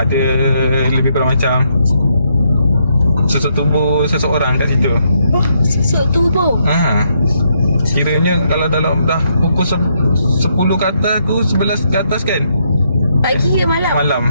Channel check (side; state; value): both; inverted; correlation -0.76